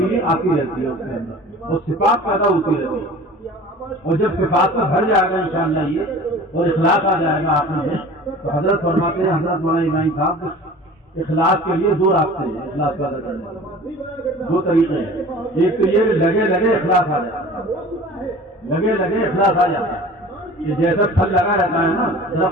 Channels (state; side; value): normal; both; correlation 0.42